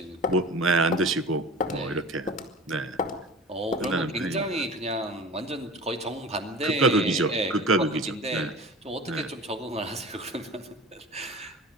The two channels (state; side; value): normal; both; correlation 0.37